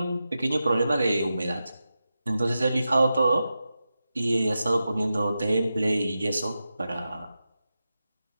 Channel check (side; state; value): both; inverted; correlation -0.91